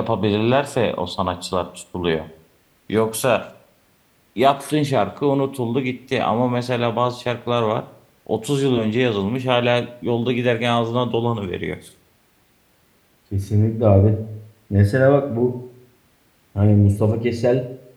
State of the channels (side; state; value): both; identical; correlation 1.00